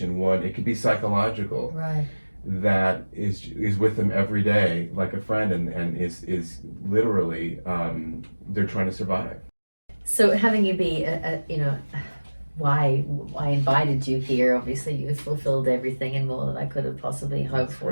it could be psychological, Right. that is with them every day like a friend, and is literally they're trying to survive. So having you be why I invited you here, obviously you've fulfilled everything and more than I could have possibly hoped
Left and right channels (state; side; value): inverted; both; correlation -1.00